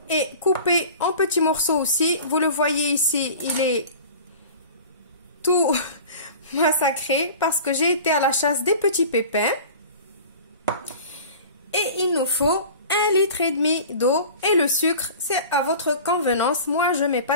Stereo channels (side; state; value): both; inverted; correlation -0.40